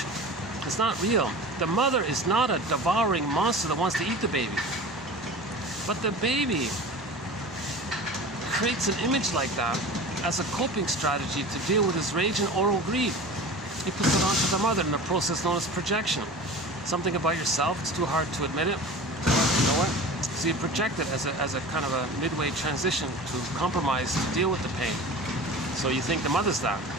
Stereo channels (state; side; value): normal; both; correlation 0.36